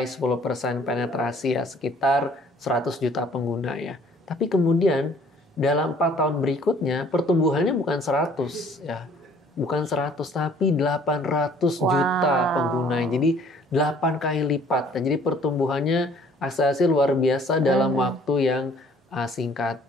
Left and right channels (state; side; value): normal; both; correlation 0.57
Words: 10% penetrasi ya, sekitar 100 juta pengguna ya. Tapi kemudian dalam 4 tahun berikutnya pertumbuhannya bukan 100 ya. Bukan 100 tapi 800 juta pengguna. Jadi 8 kali lipat. Jadi pertumbuhannya akselerasi luar biasa dalam waktu yang singkat.